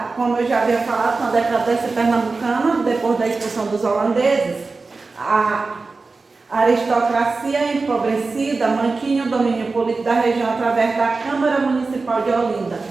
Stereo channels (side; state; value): left; quieter; 3.9 dB